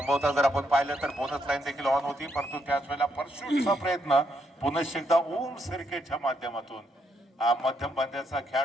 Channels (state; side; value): normal; both; correlation 0.76